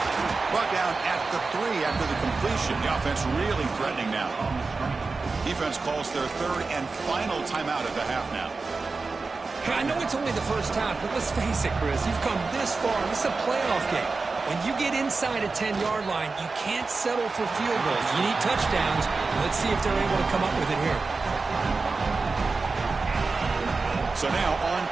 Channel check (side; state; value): left; quieter; 4.1 dB